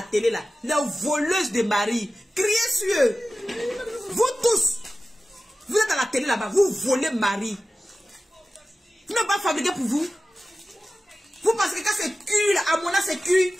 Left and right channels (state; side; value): normal; both; correlation 0.95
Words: télé là. Les voleuses de mari. Criez sur eux. Vous tous. Vous êtes à la télé là-bas. Vous volez mari. Vous n'avez pas fabriqué pour vous. Vous pensez que quand c'est cuit là, Amona c'est cuit.